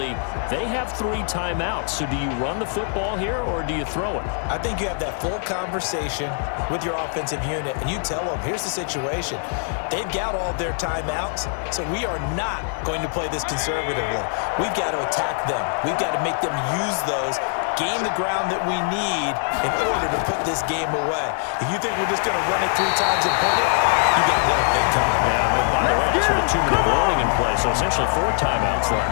they have 3 timeouts. So do you run the football here or do you throw it? I think you have that full conversation with your offensive unit, and you tell them, here's the situation. They've got all their timeouts, so we are not going to play this conservatively. We've got to attack them. We've got to make them use those, gain the ground that we need in order to put this game away. If you think we're just going to run it 3 times and punt it, you got another thing coming. Yeah, but by the way, it's with a 2-minute warning in play, so essentially 4 timeouts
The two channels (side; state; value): right; silent; 59 dB below the other